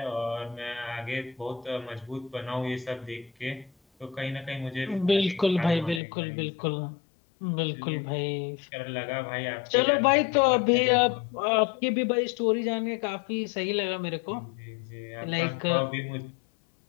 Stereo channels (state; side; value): drops out; right; at 6.0 s